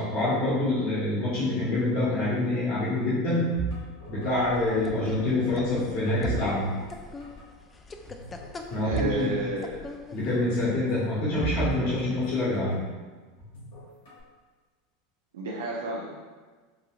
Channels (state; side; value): normal; both; correlation 0.34